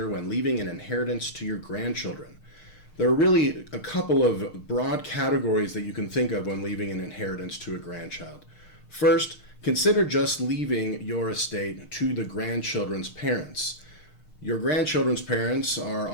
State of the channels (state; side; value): late; right; 6.5 ms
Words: when leaving an inheritance to your grandchildren. There are really a couple of broad categories that you can think of when leaving an inheritance to a grandchild. First, consider just leaving your estate to the grandchildren's parents. Your grandchildren's parents are